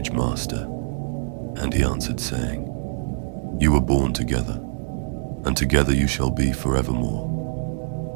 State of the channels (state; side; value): silent; left; digital silence